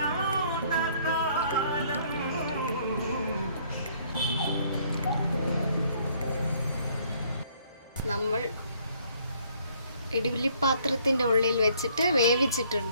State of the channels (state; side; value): inverted; both; correlation -0.63